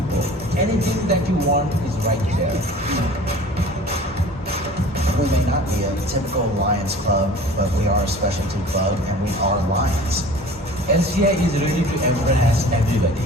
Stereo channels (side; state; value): both; normal; correlation 0.44